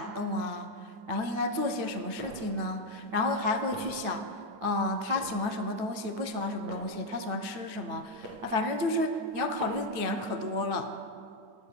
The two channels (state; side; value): late; left; 9.1 ms